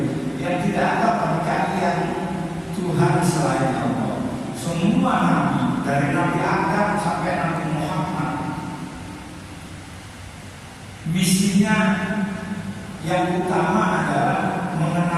yang tidak ada bagi kalian Tuhan selain Allah. Semua nabi dari Nabi Adam sampai Nabi Muhammad, misinya yang utama adalah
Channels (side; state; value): both; identical; correlation 1.00